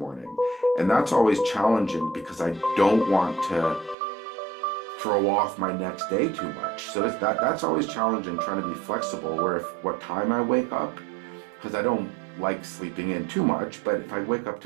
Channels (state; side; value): drops out; left; at 4.0 s